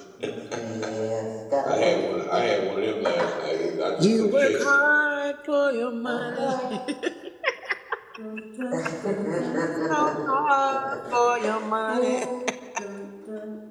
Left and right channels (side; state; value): both; identical; correlation 1.00